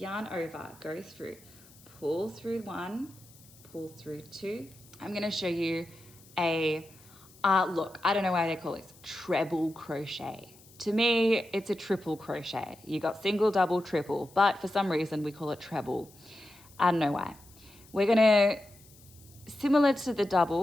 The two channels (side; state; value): left; noise; hiss, 25 dB below the sound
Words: over, go through, pull through 1, pull through 2. I'm going to show you a, look, I don't know why they call it treble crochet. To me, it's a triple crochet. You got single, double, triple, but for some reason we call it treble. I don't know why. We're going to, similar to the